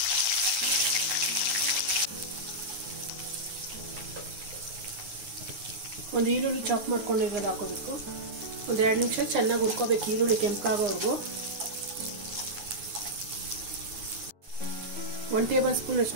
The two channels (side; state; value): left; late; 9.5 ms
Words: ಒಂದು ಈರುಳ್ಳಿ ಚಾಪ್ ಮಾಡ್ಕೊಂಡಿರೋದು ಹಾಕೋಬೇಕು. ಒಂದು 2 ನಿಮಿಷ ಚೆನ್ನಾಗಿ ಹುರ್ಕೋಬೇಕು, ಈರುಳ್ಳಿ ಕೆಂಪಾಗೋವರೆಗೂ. 1 ಟೇಬಲ್ ಸ್ಪೂನ್